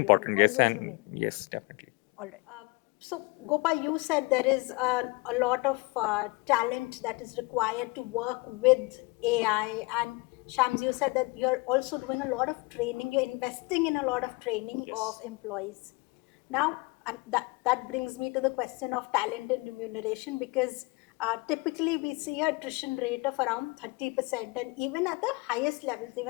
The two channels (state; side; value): quieter; right; 26.1 dB